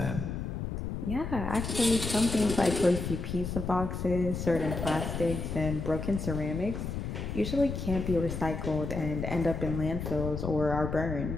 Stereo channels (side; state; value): left; noise; rumble, 4 dB below the sound